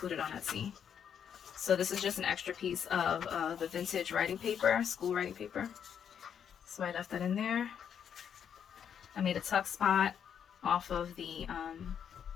on Etsy. So this is just an extra piece of the vintage writing paper, school writing paper. So I left that in there. I made a tuck spot off of the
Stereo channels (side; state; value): right; quieter; 8.2 dB